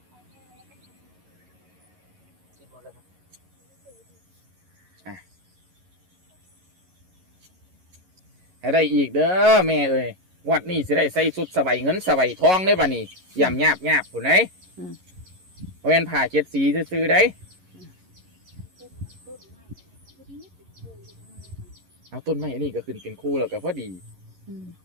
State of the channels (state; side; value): late; left; 11 ms